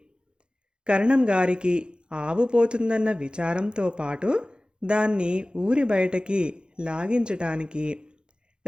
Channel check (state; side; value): late; left; 0.050 ms